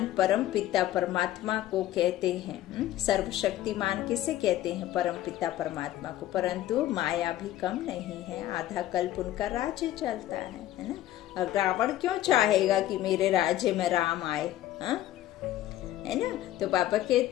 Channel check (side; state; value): right; quieter; 13.7 dB